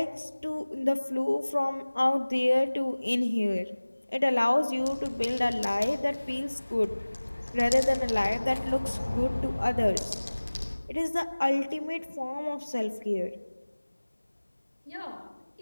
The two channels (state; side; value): inverted; both; correlation -1.00